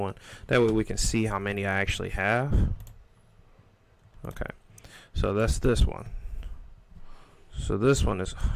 That way we can see how many I actually have. Okay, so that's this one. So this one is, oh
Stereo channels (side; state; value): both; identical; correlation 1.00